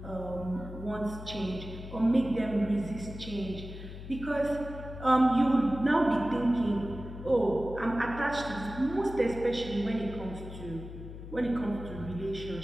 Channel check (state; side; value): noise; left; hum, 11 dB below the sound